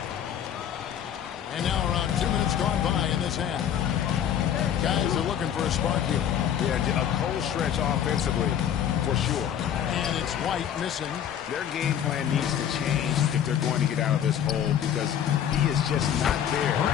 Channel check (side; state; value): right; quieter; 9.5 dB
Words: And now around 2 minutes gone by in this half. Guys are looking for a spark here. Yeah, a cold stretch offensively, for sure. And it's White missing. Their game plan needs to change if they're going to get out of this hole because he is just not there